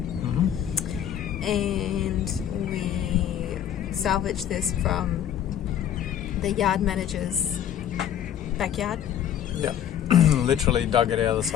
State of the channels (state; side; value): quieter; right; 10.1 dB